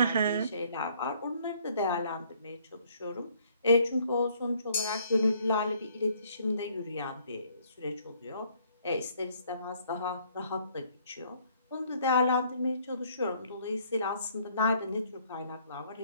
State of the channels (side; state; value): both; inverted; correlation -0.63